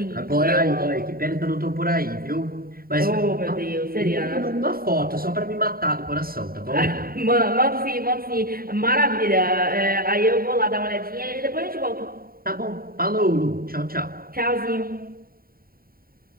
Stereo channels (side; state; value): left; late; 0.43 ms